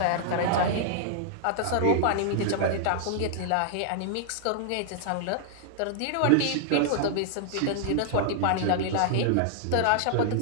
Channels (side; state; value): both; different; correlation -0.01